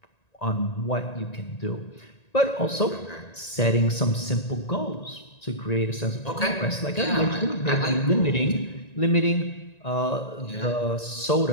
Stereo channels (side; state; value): right; late; 1.9 ms